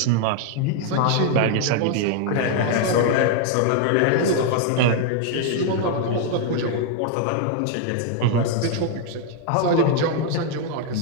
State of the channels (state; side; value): different; both; correlation 0.00